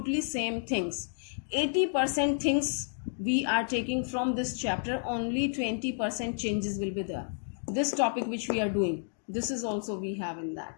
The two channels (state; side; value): silent; right; digital silence